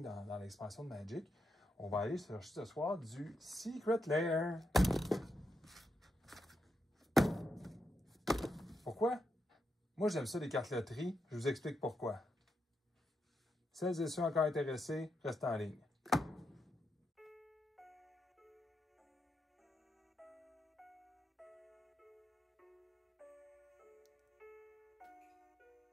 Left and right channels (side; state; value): both; normal; correlation 0.83